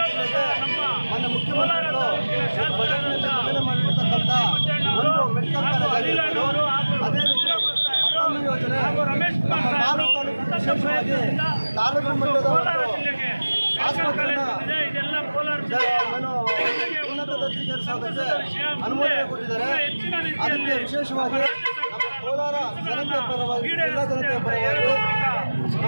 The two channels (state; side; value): inverted; both; correlation -1.00